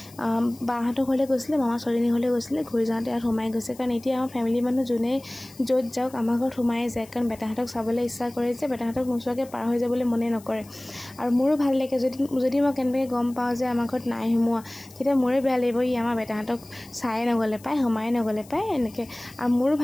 বাহঁতৰ ঘৰলৈ গৈছিলে মামা ছোৱালীজনীৰ ঘৰলৈ গৈছিলে ঘূৰি যাওঁতে ইয়াত সোমাই গৈছে কাৰণ এতিয়া আমাৰ ফেমিলি মানুহ যোনে য'ত যাওক আমাৰ ঘৰত সোমাই যায় কাৰণ বেটাহঁতক চাবলৈ ইচ্ছা কৰে যে বেটাহঁতক নোচোৱাকৈ পাৰ হৈ যাবলৈ মনে নকৰে আৰু মোৰো ভাল লাগে যদি মই কেনেকৈ গম পাওঁ যে আমাৰ ঘৰত নাই সোমোৱা তেতিয়া মোৰে বেয়া লাগিব ই আমাৰ বেটাহঁতক চাই নগ'লে পায় সোমাই নগ'লে পায় এনেকৈ আৰু মোৰো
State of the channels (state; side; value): noise; left; hiss, 23 dB below the sound